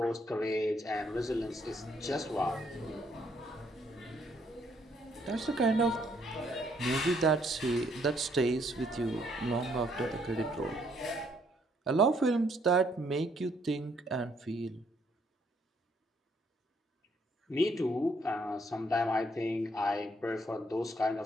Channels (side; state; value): both; normal; correlation 0.69